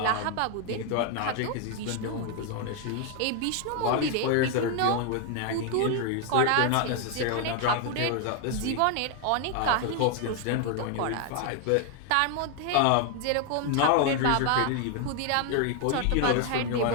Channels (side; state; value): both; different; correlation 0.01